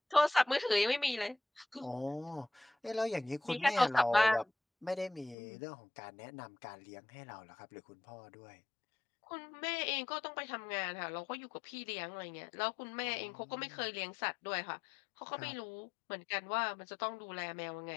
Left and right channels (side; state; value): right; drops out; at 5.4 s